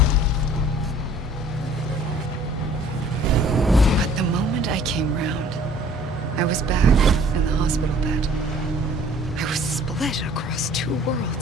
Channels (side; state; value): both; normal; correlation 0.53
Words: But the moment I came round, I was back in the hospital bed. I was split across two